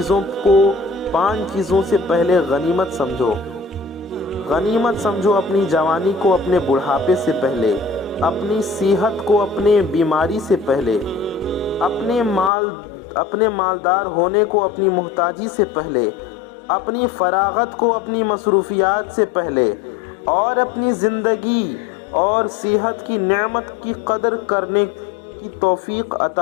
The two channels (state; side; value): drops out; right; at 12.5 s